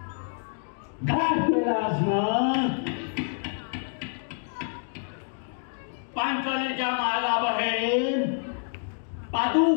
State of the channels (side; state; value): right; silent; 60 dB below the other